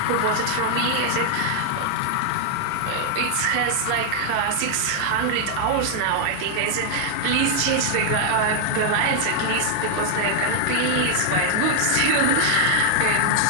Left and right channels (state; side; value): different; both; correlation -0.01